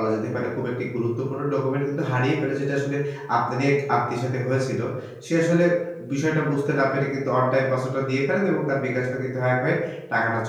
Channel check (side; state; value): both; identical; correlation 1.00